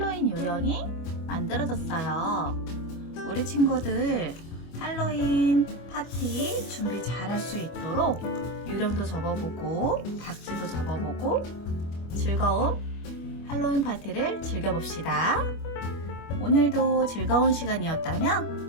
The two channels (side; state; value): right; late; 25 ms